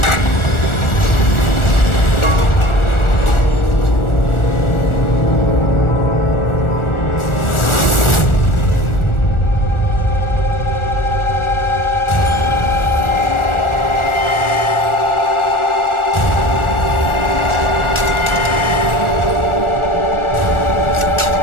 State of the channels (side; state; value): right; late; 1.4 ms